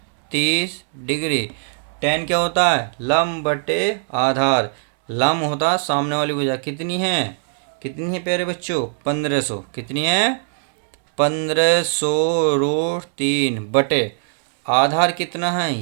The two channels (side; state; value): left; silent; 66 dB below the other